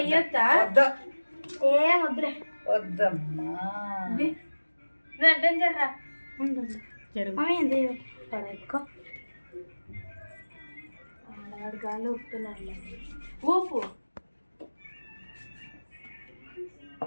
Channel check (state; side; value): inverted; both; correlation -1.00